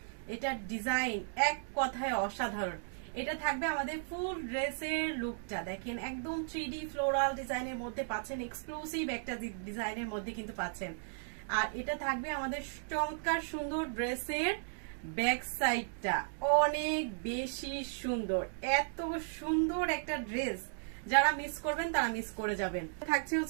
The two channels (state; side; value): silent; left; digital silence